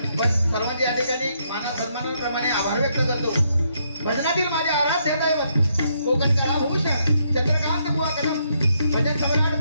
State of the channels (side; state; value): both; inverted; correlation -0.75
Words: पण सर्वांचे या ठिकाणी माना सन्मानाप्रमाणे आभार व्यक्त करतो। भजनातील माझे आराध्य दैवत कोकणकला भूषण चंद्रकांत बुवा कदम, भजन सम्राट